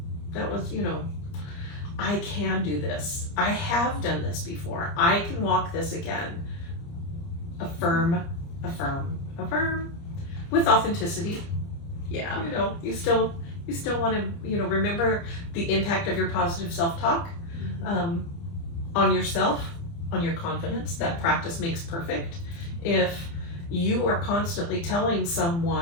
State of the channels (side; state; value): right; late; 30 ms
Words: That was, I can do this. I have done this before. I can walk this again. Affirm, affirm, affirm. With authenticity. Yeah. You still want to, remember the impact of your positive self-talk on yourself, on your confidence. That practice makes perfect. If you are constantly telling